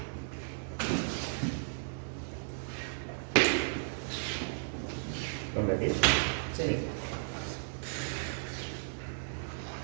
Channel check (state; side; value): silent; left; digital silence